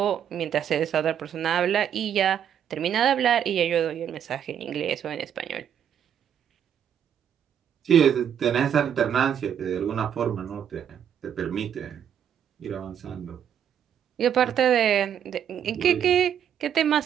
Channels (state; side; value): quieter; left; 9.0 dB